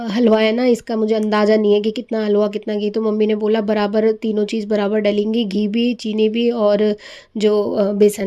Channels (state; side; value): identical; both; correlation 1.00